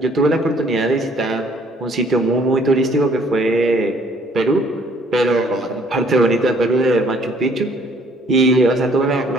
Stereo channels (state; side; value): normal; both; correlation 0.61